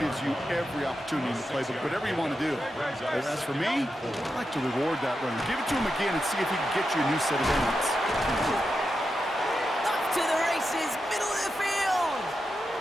you every opportunity to play, but whatever you want to do. But as for me, I like to reward that runner. Give it to him again and see if he can get you a new set of downs. Up to the races, middle of the field.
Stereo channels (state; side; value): normal; both; correlation 0.88